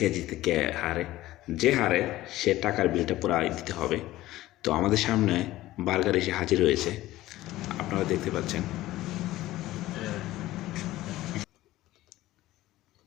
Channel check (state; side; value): quieter; right; 16.2 dB